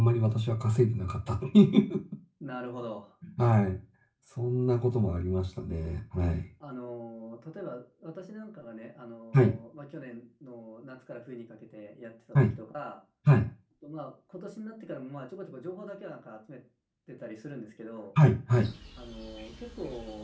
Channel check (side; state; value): both; identical; correlation 1.00